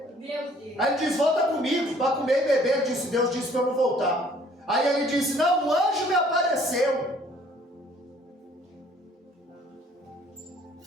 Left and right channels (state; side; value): normal; both; correlation 0.58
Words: Meu Deus. Aí ele diz: volta comigo, para comer e beber. Ele disse: Deus disse para eu não voltar. Aí ele disse: não, um anjo me apareceu.